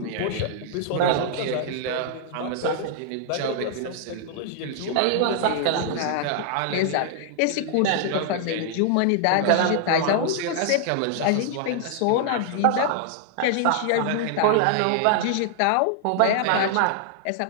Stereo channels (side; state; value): both; different; correlation -0.01